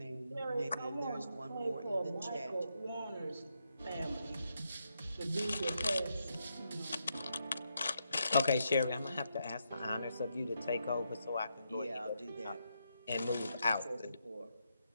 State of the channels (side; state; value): both; inverted; correlation -0.82